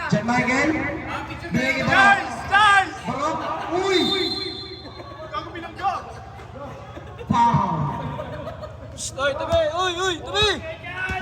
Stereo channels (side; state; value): both; identical; correlation 1.00